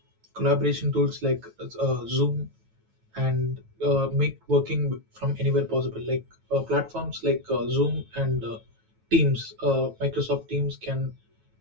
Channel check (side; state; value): left; late; 9.2 ms